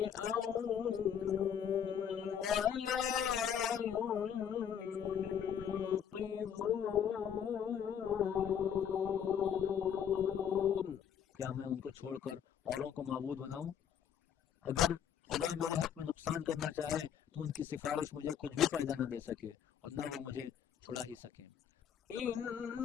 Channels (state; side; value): quieter; right; 8.6 dB